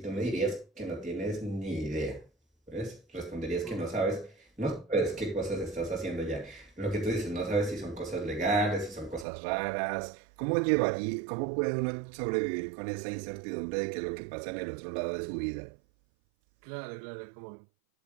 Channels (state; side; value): drops out; left; at 9.2 s